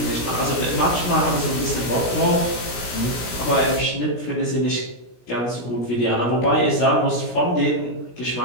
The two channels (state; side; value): late; right; 17 ms